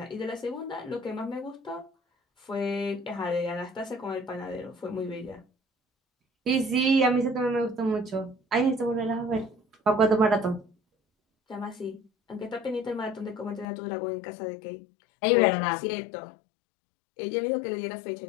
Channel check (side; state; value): right; drops out; at 13.7 s